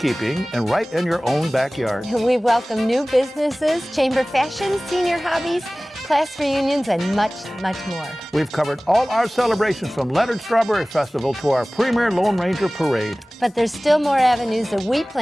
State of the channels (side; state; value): both; normal; correlation 0.98